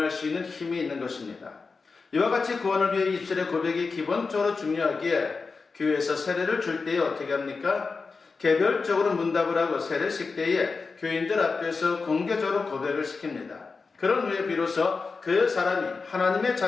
수 있는 힘이 있는 것입니다. 이와 같이 구원을 위해 입술의 고백이 기본적으로 중요하기에 교회에서 세례를 줄 때에 어떻게 합니까? 개별적으로 문답을 하고 세례식 때에 교인들 앞에서 공개적으로 고백을 시킵니다. 그런 후에 비로소 그 사람이 하나님의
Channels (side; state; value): right; quieter; 4.5 dB